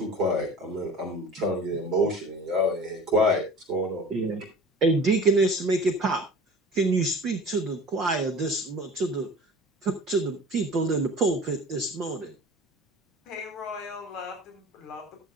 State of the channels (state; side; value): normal; both; correlation 0.40